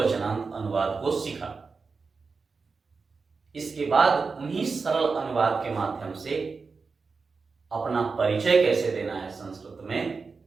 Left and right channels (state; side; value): quieter; left; 4.6 dB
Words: अनुवाद को सीखा। इसके बाद उन्हीं सरल अनुवाद के माध्यम से अपना परिचय कैसे देना है संस्कृत में,